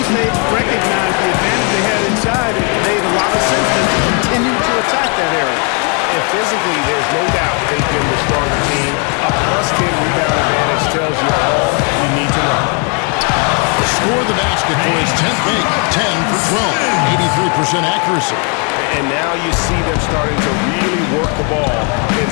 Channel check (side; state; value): right; quieter; 37.1 dB